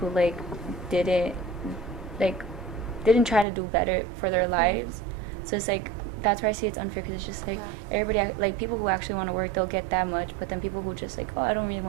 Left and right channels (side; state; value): left; drops out; at 3.5 s